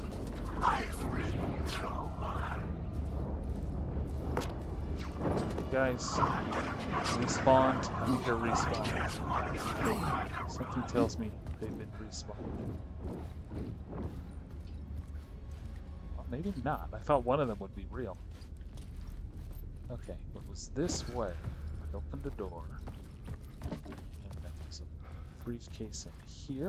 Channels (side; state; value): both; identical; correlation 1.00